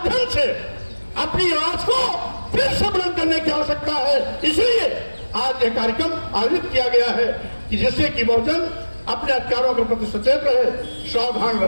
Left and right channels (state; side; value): inverted; both; correlation -1.00